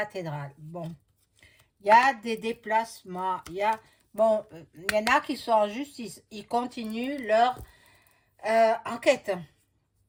Bon, il y a des déplacements. Bon, il y en a qui sont en justice. Ils continuent leur enquête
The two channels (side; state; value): both; identical; correlation 1.00